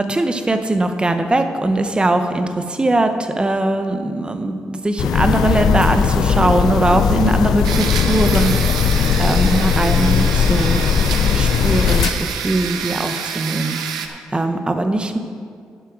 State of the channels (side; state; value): both; normal; correlation 0.76